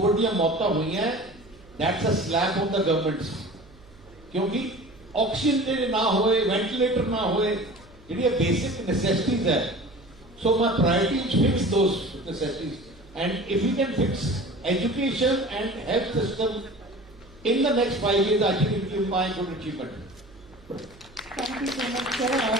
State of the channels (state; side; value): noise; right; hum, 25 dB below the sound